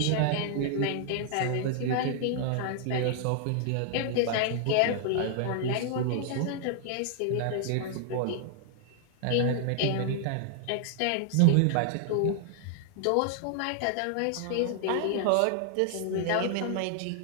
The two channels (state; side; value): different; both; correlation 0.00